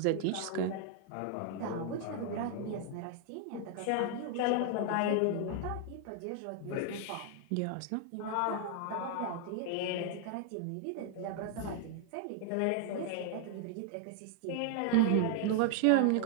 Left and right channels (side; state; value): both; different; correlation 0.00